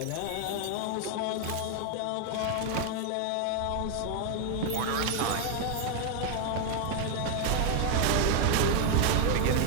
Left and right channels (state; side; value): different; both; correlation 0.01